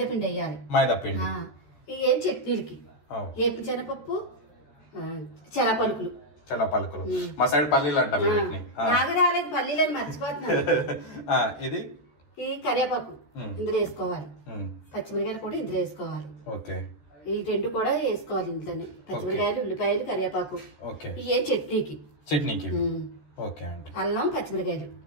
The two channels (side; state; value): right; late; 14 ms